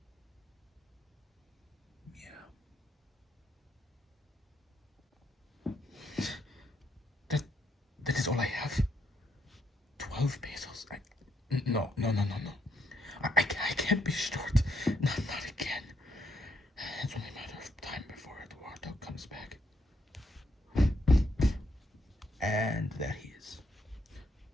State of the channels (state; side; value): normal; both; correlation 0.76